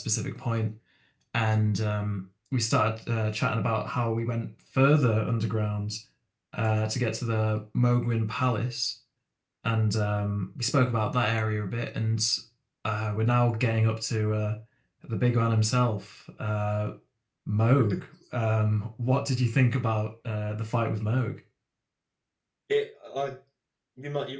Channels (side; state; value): both; identical; correlation 1.00